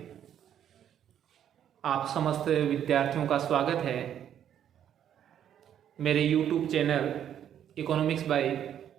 आप समस्त विद्यार्थियों का स्वागत है मेरे YouTube channel economics by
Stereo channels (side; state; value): left; quieter; 9.9 dB